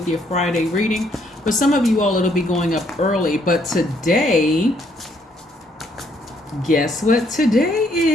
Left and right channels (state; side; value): normal; both; correlation 0.69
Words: your Friday reading. For some of you all, it'll be going up early, but today, guess what today